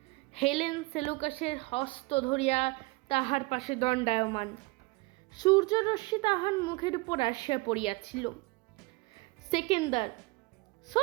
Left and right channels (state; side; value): quieter; left; 24.9 dB